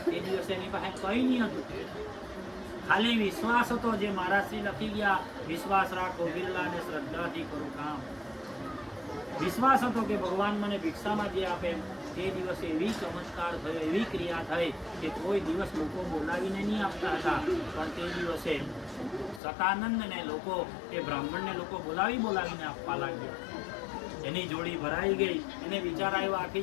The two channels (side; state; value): right; drops out; at 19.4 s